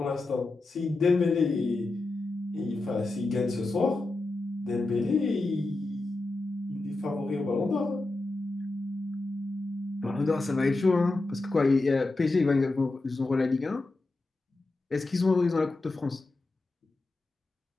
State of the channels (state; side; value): quieter; right; 3.1 dB